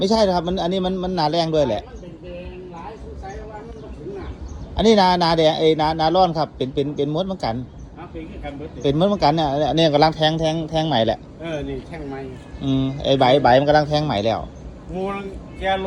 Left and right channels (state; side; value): identical; both; correlation 1.00